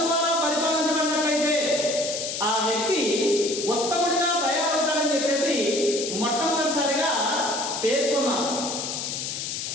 ద్వారా పరిపాలించబడినట్లయితే ఆ వ్యక్తి ఉత్తముడిగా తయారవుతాడని చెప్పేసి మొట్టమొదటిసారిగా పేర్కొన్నాం.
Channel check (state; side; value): noise; left; hiss, 4 dB below the sound